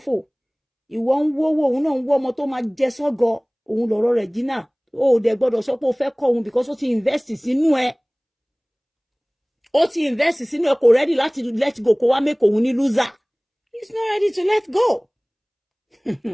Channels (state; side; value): identical; both; correlation 1.00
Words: Ìwọ ń wówó òun náà ń wọ́ ọmọ tó máa jẹ sọ́gọ. Òun lọ̀rọ̀ Regina. Ó dẹ̀ gbọ́dọ̀ sọ pé ó fẹ́ kọ́ òun because ó ti invest sínú ẹ̀. Ó ti invest sínú ẹ̀ kò ready láti let go kó wá make òun ní loser. He's not ready to let go.